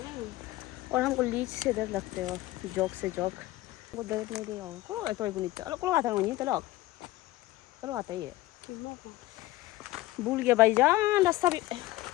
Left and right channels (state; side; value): quieter; right; 17.4 dB